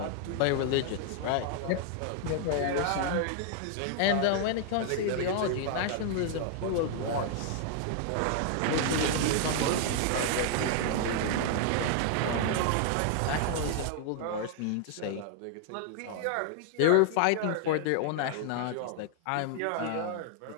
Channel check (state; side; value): different; both; correlation 0.00